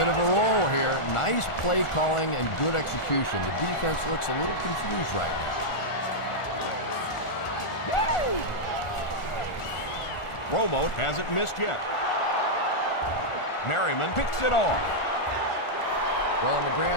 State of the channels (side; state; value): right; late; 1.4 ms